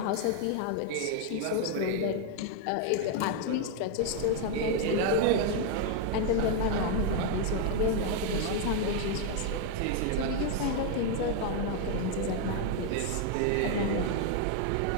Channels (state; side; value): different; both; correlation 0.01